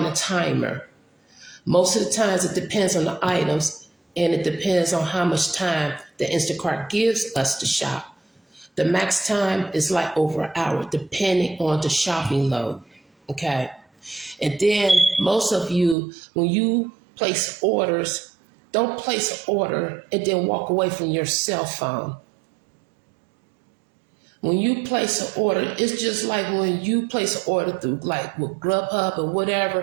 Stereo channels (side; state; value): left; drops out; at 16.0 s